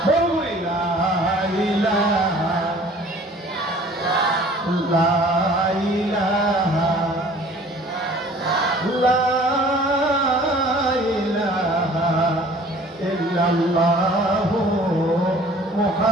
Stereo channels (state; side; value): normal; both; correlation 0.51